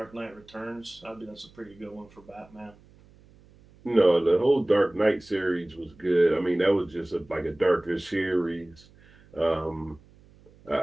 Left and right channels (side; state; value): right; noise; hum, 27 dB below the sound